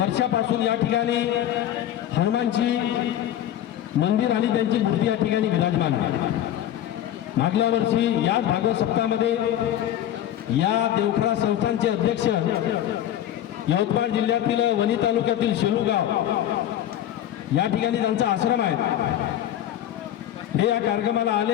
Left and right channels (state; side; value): quieter; right; 11.6 dB